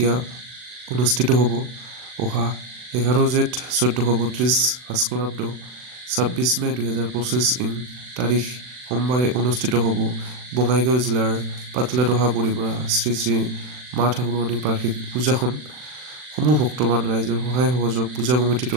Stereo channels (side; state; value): left; late; 40 ms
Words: অনুষ্ঠিত হ'ব অহা 11 জেঠ 1432 ভাস্কৰাব্দ 26 মে 2025 তাৰিখ সোমবাৰে অনুষ্ঠিত হ'ব বঙাইগাঁও জিলাৰ পাতলাদহা পৰিপৰা শ্ৰী শ্ৰী মা ঠাকুৰণী বাৰ্ষিক পূজাখন সমূহ ভক্তবান ৰাইজৰ সহায় সহযোগ পূজা কমিটিৰ